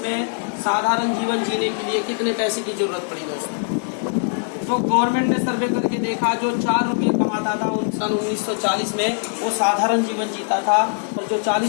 साधारण जीवन जीने के लिए कितने पैसे की जरूरत पड़ी है। तो गवर्नमेंट ने सर्वे करके देखा, जो 4 रुपये कमाता था सन 1940 में वो साधारण जीवन जीता था, और जो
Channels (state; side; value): silent; right; 65 dB below the other